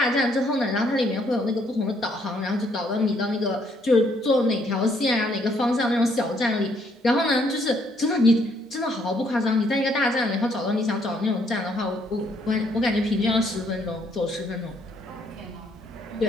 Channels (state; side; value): normal; both; correlation 0.69